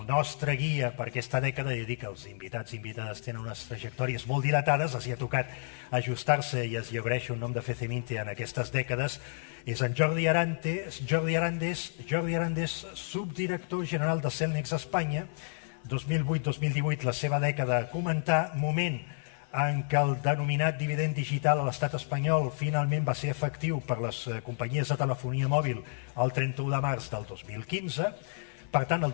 nostre guia per aquesta dècada, i dic que els invitats i invitades tenen unes trajectòries molt dilatades, els hi ha tocat ajustar-se i els agraeixo un nom de Feceminte en aquestes dècades, és en Jordi Arandes, subdirector general de Cellnex Espanya, 2008-2018, la seva dècada a comentar, moment en què el denominat dividend digital a l'estat espanyol finalment va ser efectiu per les companyies de telefonia mòbil el 31 de març del 2015. Per tant, el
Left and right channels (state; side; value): silent; right; 56 dB below the other